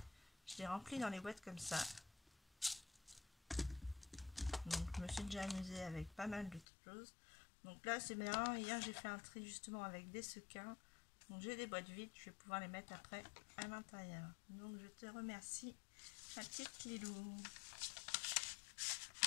Je les remplis dans les boîtes comme ça. Donc je me suis déjà amusée avec pas mal de choses. Donc là c'est bien. Hier j'ai fait un tri justement avec des sequins. Donc j'ai des boîtes vides. Je vais pouvoir les mettre après à l'intérieur. Donc je te remercie, ma petite Lilou.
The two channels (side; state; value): right; drops out; at 6.7 s